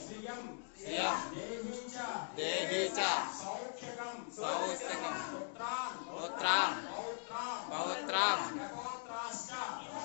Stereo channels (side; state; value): right; silent; digital silence